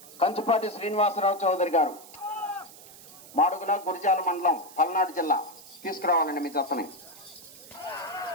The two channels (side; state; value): right; noise; hiss, 19 dB below the sound